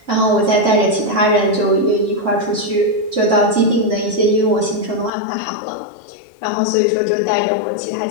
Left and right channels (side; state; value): right; drops out; at 5.1 s